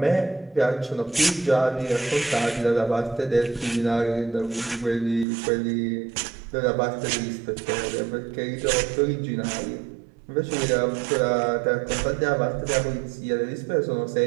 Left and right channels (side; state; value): left; drops out; at 5.2 s